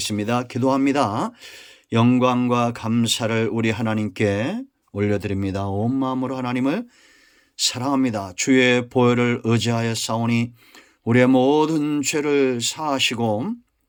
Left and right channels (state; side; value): identical; both; correlation 1.00